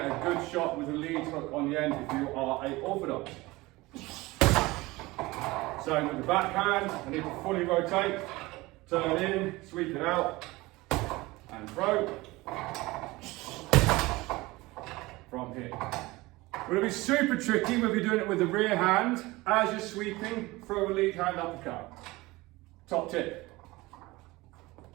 a good shot with a lead hook on the end if you are a orthodox. Same with the backhand, I need to fully rotate, turn in, sweep it out, and throw from here. It'll be super tricky when you're doing it with the rear hand. As you're sweeping, throw a lead hand uppercut. Top tip.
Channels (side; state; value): left; quieter; 21.0 dB